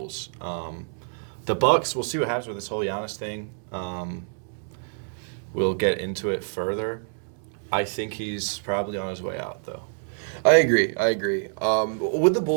The Bucks, we'll see what happens with this whole Giannis thing. We'll get into it further. I think he's probably on his way out, though. I agree. With the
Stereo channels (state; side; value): silent; left; digital silence